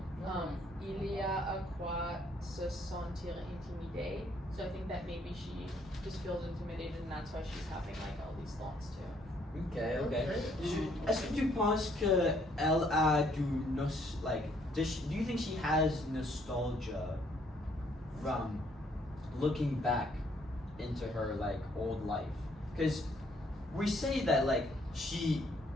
Il y a à quoi se sentir intimidé. So I think that maybe she just feels intimidated and that's why she's having like all these thoughts too. Okay, okay. Okay. Est-ce que tu penses que elle a do you think she has nostalgia from looking back into her like old life? Because we say that like she's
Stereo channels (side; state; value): both; normal; correlation 0.67